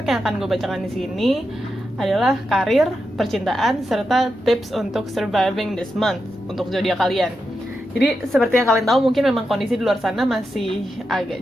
yang akan gue bacakan di sini adalah karir, percintaan, serta tips untuk surviving this month untuk zodiak kalian. Jadi seperti yang kalian tahu mungkin memang kondisi di luar sana masih agak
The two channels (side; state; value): both; normal; correlation 0.87